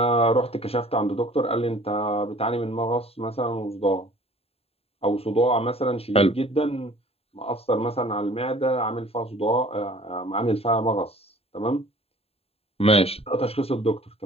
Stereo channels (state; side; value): late; right; 0.29 ms